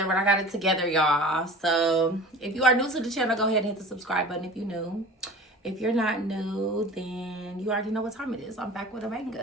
but I got it together, y'all. So if you are new to the channel, go ahead and hit the subscribe button if you're new. If you're not new, then you already know what time it is. I'm back with a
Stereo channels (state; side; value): normal; both; correlation 0.40